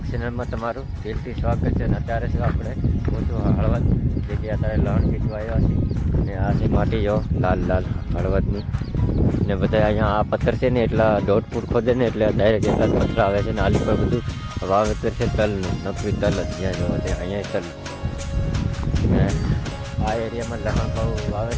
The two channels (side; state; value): both; identical; correlation 1.00